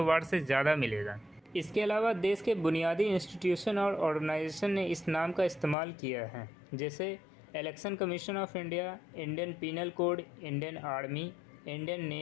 बार से ज़्यादा मिलेगा। इसके अलावा देश के बुनियादी इंस्टीट्यूशन और ऑर्गेनाइजेशन ने इस नाम का इस्तेमाल किया है, जैसे election commission of India, Indian penal code, Indian army, Indian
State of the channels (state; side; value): drops out; right; at 5.8 s